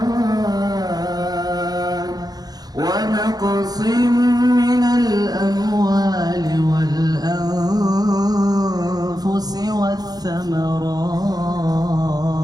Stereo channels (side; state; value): left; late; 0.19 ms